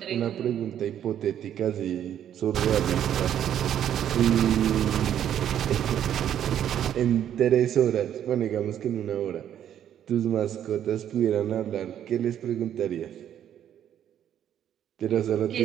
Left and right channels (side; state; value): left; quieter; 10.2 dB